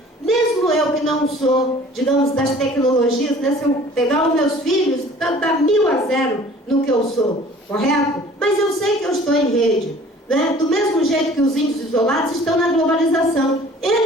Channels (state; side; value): normal; both; correlation 0.49